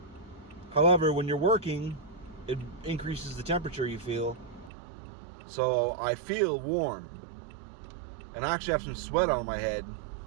However, when you're working, it increases the temperature you feel. So I feel warm. And I actually have some sweat on my head.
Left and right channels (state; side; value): drops out; left; at 4.7 s